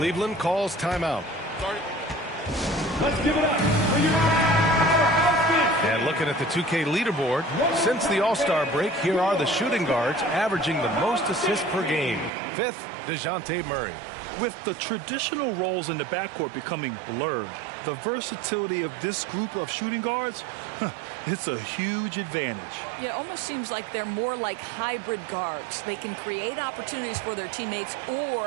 calls timeout. Let's give it up for your offense. And looking at the 2K leaderboard, since the All-Star break, here are the shooting guards averaging the most assists per game. 5th, DeJounte Murray. With the traditional roles in the backcourt becoming blurred, the versatility of this group of shooting guards, it's a huge advantage. Yeah, it almost seems like they're more like hybrid guards. They can create opportunities for their teammates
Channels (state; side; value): drops out; left; at 12.3 s